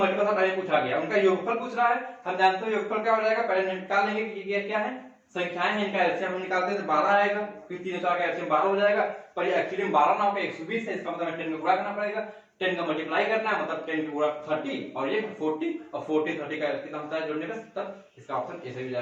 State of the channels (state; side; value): identical; both; correlation 1.00